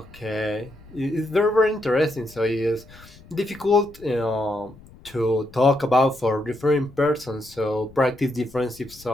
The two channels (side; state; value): left; noise; rumble, 22 dB below the sound